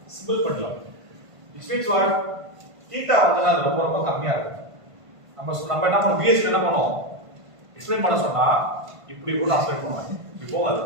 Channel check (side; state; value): left; late; 1.5 ms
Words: simple pendulum. Which means what? Theta வந்து ரொம்ப ரொம்ப கம்மியா இருக்கு. நம்ம என்ன பண்ணோம், VS என்ன பண்ணோம், எக்ஸ்பிளைன் பண்ண சொன்னா இப்படி கூட ஆஸ்பெக்ட் பண்ணுவாங்க. இப்போ அது